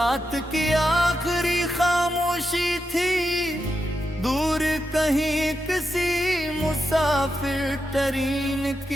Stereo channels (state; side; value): normal; both; correlation 0.86